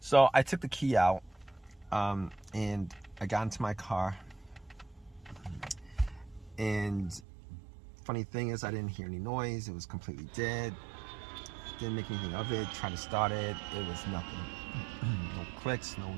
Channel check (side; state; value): left; drops out; at 7.2 s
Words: I took the key out and I got into my car. And funny thing is, I didn't hear any noise. It was completely dead. Didn't make anything of it. Tried to start it. It was nothing. No clicks, no